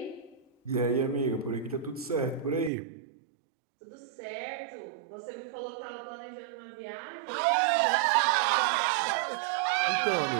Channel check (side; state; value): left; drops out; at 2.7 s